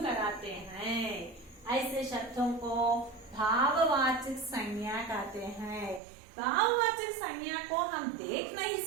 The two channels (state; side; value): drops out; left; at 6.0 s